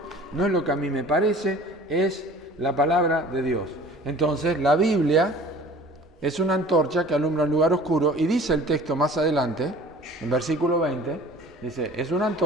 no es lo que a mí me parece, es la palabra de Dios. Entonces, la Biblia es una antorcha que alumbra un lugar oscuro, y dice el texto más adelante, en versículo 20, dice: es una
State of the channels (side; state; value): both; normal; correlation 0.46